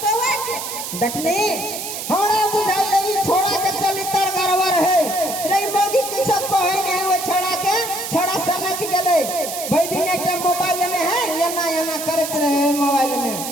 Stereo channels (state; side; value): noise; right; hiss, 6 dB below the sound